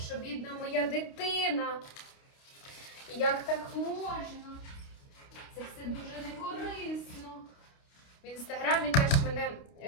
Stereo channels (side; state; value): right; late; 29 ms